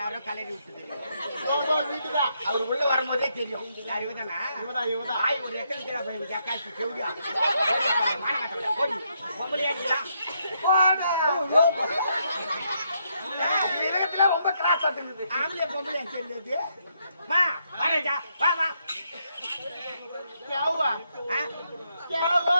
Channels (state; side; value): inverted; both; correlation -0.77